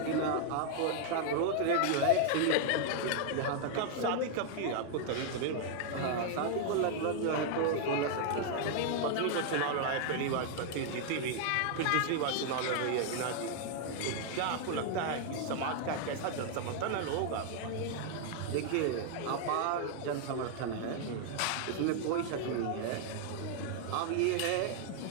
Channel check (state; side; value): different; both; correlation 0.00